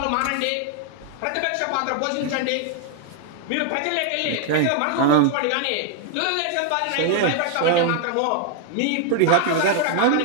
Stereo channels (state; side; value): different; both; correlation 0.00